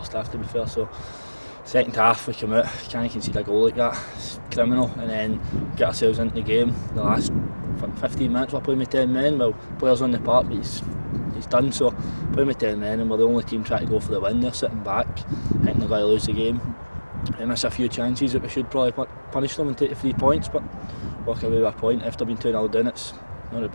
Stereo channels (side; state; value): both; inverted; correlation -1.00